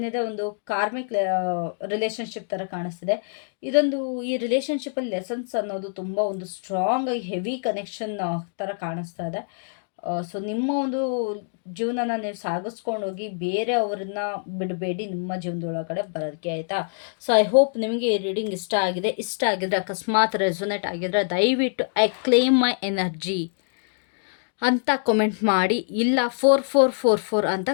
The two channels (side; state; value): right; silent; digital silence